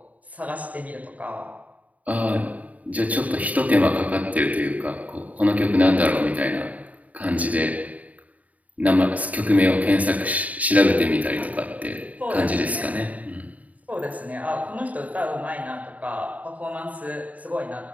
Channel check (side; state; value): left; late; 0.071 ms